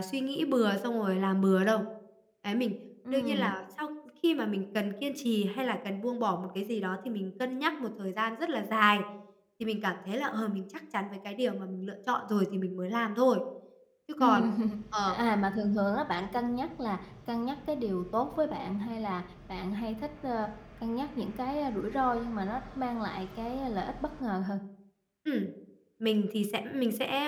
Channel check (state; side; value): identical; both; correlation 1.00